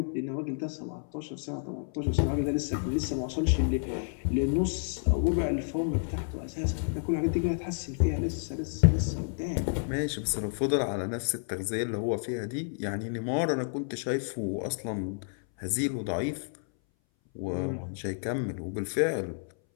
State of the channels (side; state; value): right; silent; 58 dB below the other